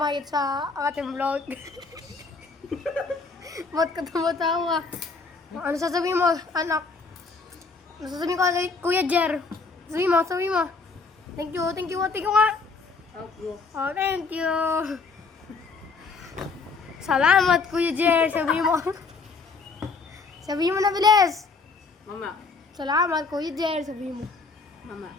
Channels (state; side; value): quieter; right; 4.3 dB